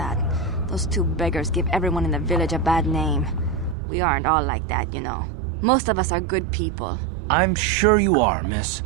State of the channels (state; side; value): drops out; left; at 3.8 s